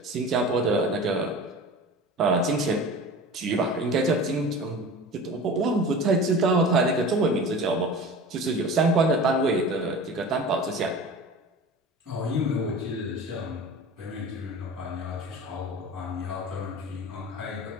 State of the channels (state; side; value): normal; both; correlation 0.36